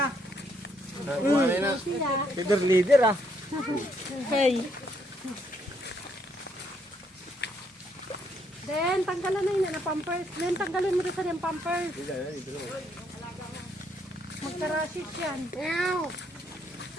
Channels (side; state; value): both; normal; correlation 0.72